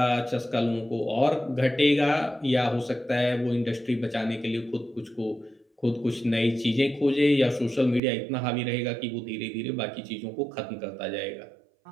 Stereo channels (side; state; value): left; drops out; at 8.0 s